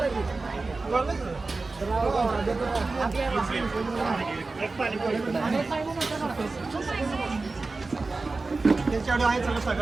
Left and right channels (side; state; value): left; quieter; 3.7 dB